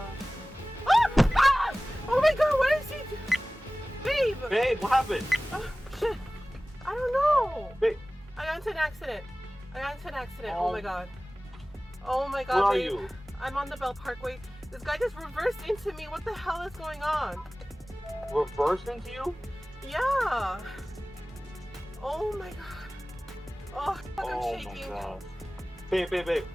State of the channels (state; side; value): normal; both; correlation 0.98